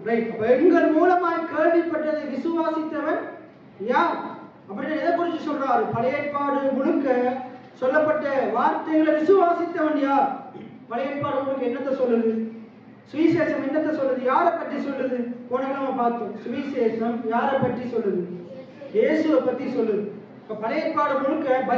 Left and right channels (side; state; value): both; identical; correlation 1.00